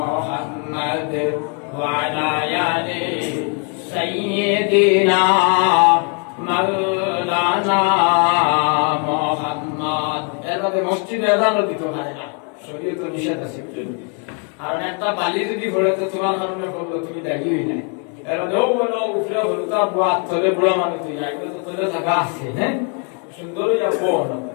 وعلى آل سيدنا مولانا محمد এর মধ্যে মসজিদে আযানও দিতে পারে না, শরীয়ত নিষেধ আছে। কারণ একটা বালি যদি পড়ে তো তোমার কারণে পড়লো, তুমি দাঁড়িয়ে হই নাই। এর মধ্যে ও বলো উপরে হলো তো বাদ তলে বুড়া মানুষ তুই যাইবে তো তলে থাকা আছে। হ্যাঁ, সুন্দর হইয়া বল,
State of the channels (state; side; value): quieter; right; 39.4 dB